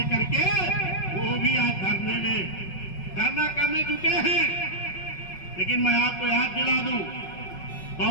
के वो भी आज धरना करने जुटे हैं। लेकिन मैं आपको याद दिला दूं,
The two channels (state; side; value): late; right; 5.4 ms